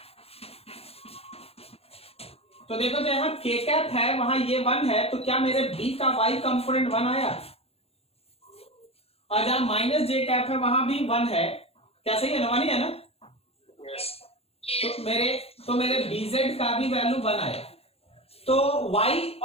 तो देखो जहां के कैप है वहां ये 1 है, तो क्या मेरे B का Y कंपोनेंट 1 आया, और जहां माइनस जे कैप है वहां भी 1 है, क्या सही है ना, 1 ही है ना, तो मेरे BZ का भी वैल्यू 1 आया। तो Y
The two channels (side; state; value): right; late; 0.29 ms